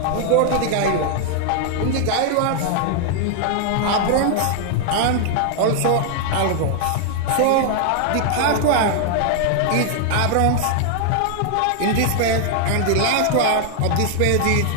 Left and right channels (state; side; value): different; both; correlation 0.00